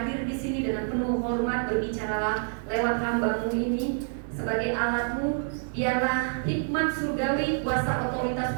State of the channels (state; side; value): silent; left; 60 dB below the other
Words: di sini dengan penuh hormat, berbicaralah lewat hamba-Mu ini. Sebagai alat-Mu, biarlah hikmat surgawi, kuasa otoritas